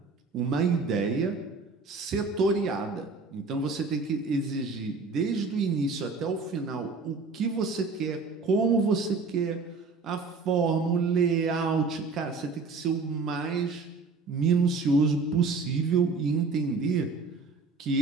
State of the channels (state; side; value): quieter; left; 4.2 dB